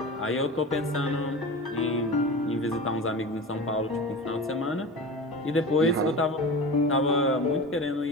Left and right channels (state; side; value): normal; both; correlation 0.31